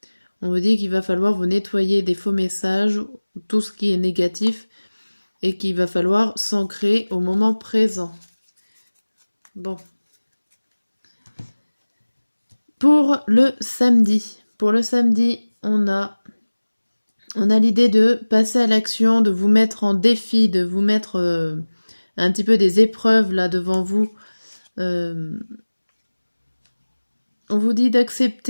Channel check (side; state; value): both; inverted; correlation -1.00